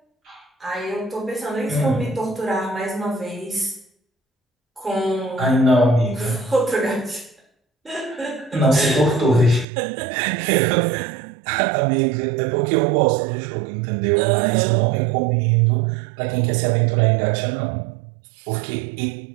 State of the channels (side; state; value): left; drops out; at 9.7 s